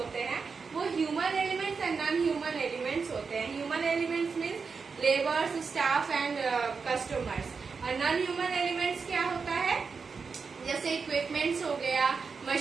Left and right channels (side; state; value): left; quieter; 5.1 dB